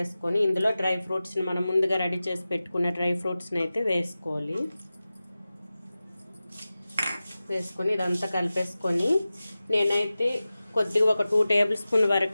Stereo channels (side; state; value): both; inverted; correlation -0.96